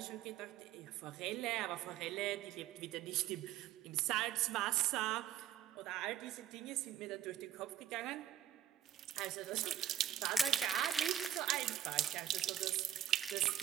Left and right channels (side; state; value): left; quieter; 10.8 dB